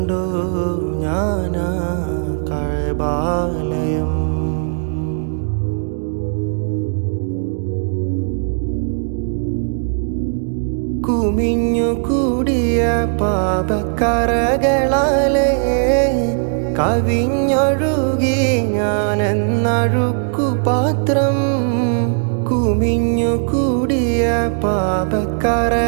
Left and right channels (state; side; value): silent; left; digital silence